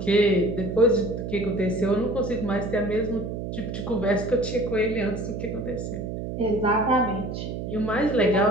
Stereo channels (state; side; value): noise; right; hum, 6 dB below the sound